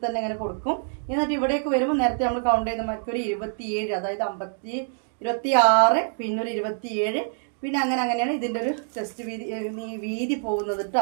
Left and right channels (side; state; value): left; silent; digital silence